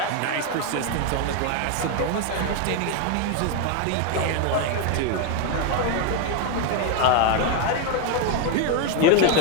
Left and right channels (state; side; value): different; both; correlation 0.01